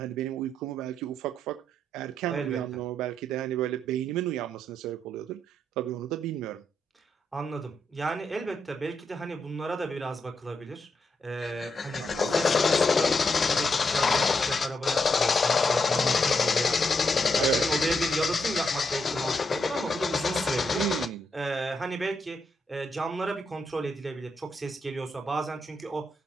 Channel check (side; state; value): both; normal; correlation 0.80